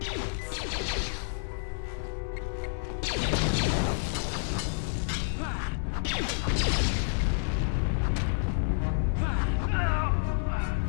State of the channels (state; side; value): silent; right; 58 dB below the other